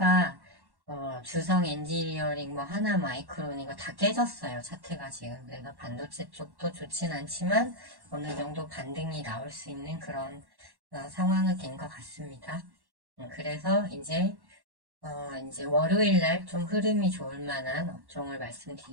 주성 엔지니어링 뭐 하나 마이크론 이거 다 깨졌어요. 차트가 지금. 그래서 반도체 쪽도 좋진 않지만 어느 정도 반등이 나올 수 있는 그런 상황이 된 것 같습니다. 그래서 이제 월요일 날 좀 흐름이 좋을 만한 업종을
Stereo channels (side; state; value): left; late; 1.1 ms